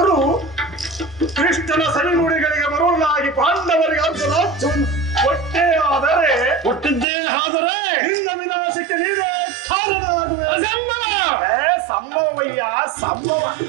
ಕೃಷ್ಣನ ಸವಿನುಡಿಗಳಿಗೆ ಬರುವುದಾಗಿ ಪಾಂಡವರಿಗೆ ಅರ್ಧ ರಾಜ್ಯವನ್ನು ಕೊಟ್ಟೇ ಆದರೆ ನಿನ್ನ ವಿನಾಶಕ್ಕೆ ನೀನೇ ಕಾರಣವಾಗುವೆ. ಸಂಭವಯ್ಯ ಸಂಭವ.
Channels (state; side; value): drops out; left; at 7.1 s